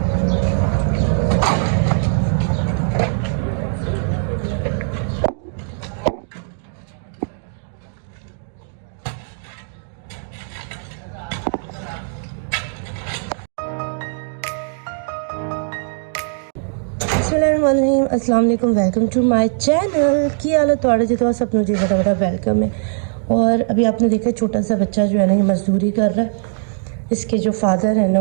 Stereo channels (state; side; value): silent; left; digital silence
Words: अस्सलाम वालेकुम, वेलकम टू माय चैनल। की हालत थोड़े जो सब मुझे बड़ा बड़ा वेलकम है। और अभी आपने देखा छोटा सा बच्चा जो है ना ये मजदूरी कर रहा है। इसके जो फादर है